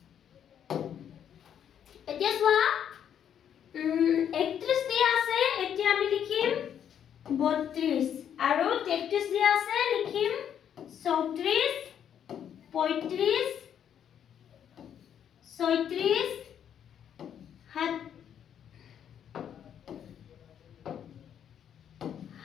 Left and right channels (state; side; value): quieter; right; 9.1 dB